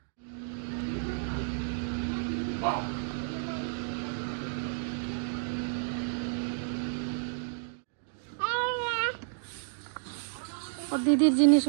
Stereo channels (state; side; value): silent; left; digital silence